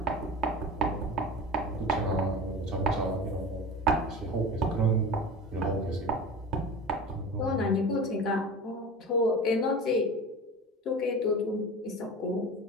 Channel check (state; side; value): normal; both; correlation 0.32